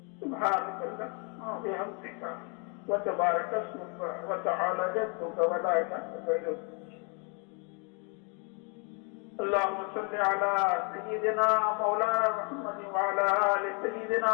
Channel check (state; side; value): quieter; right; 36.3 dB